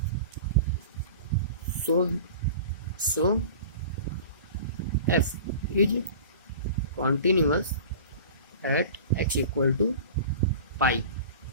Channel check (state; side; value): inverted; both; correlation -0.39